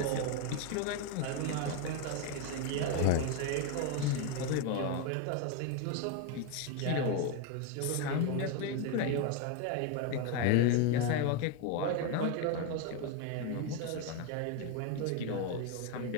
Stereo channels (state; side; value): different; both; correlation 0.01